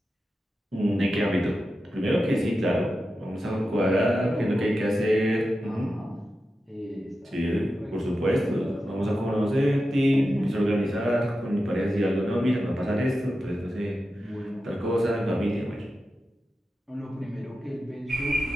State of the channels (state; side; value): normal; both; correlation 0.91